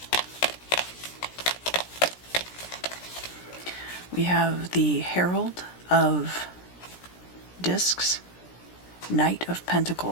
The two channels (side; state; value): right; late; 17 ms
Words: We have the Herald of Discs, Knight of